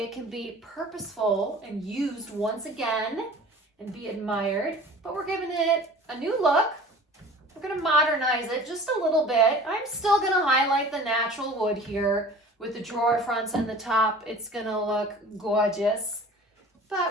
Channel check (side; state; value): both; normal; correlation 0.43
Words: can be purposeful and used once again and be admired. But we're giving it a new look. We're going to modernize it just a little bit. I'm still going to highlight the natural wood here with the drawer fronts and the top. It's going to look gorgeous.